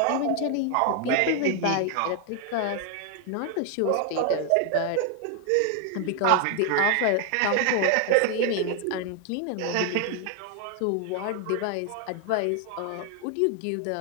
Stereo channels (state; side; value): different; both; correlation 0.00